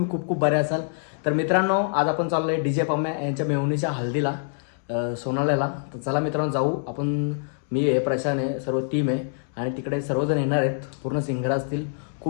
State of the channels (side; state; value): right; silent; 62 dB below the other